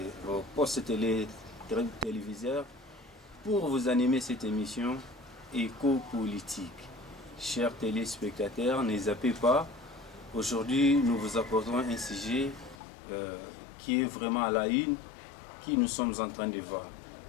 postes téléviseurs pour vous animer cette émission éco-politique. Chers téléspectateurs, ne zappez pas. Aujourd'hui, nous vous apportons un sujet qui est vraiment à la une, qui nous sommes en train de voir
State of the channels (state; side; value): drops out; right; at 12.8 s